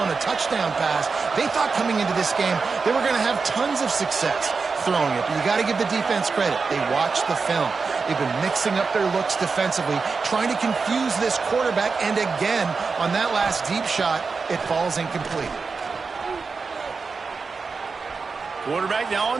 a touchdown pass. They thought coming into this game they were going to have tons of success throwing it. But you got to give the defense credit. They watched the film. They've been mixing up their looks defensively, trying to confuse this quarterback. And again, on that last deep shot, it falls incomplete. Quarterback now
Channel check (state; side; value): quieter; left; 4.7 dB